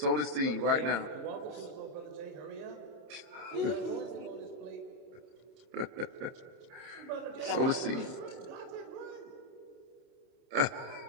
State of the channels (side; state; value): left; late; 30 ms